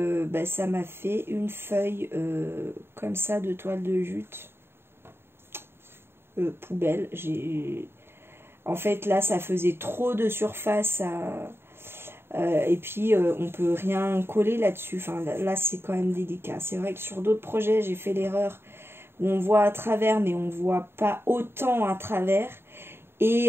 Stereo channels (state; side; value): late; left; 0.11 ms